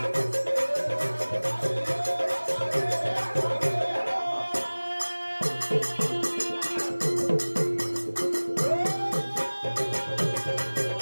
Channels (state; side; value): inverted; both; correlation -1.00